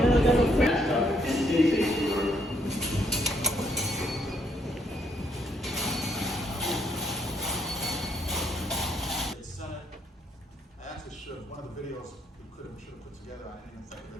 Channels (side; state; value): both; normal; correlation 0.72